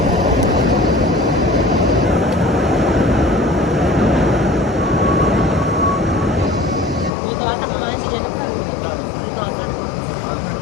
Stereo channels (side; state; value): right; drops out; at 7.1 s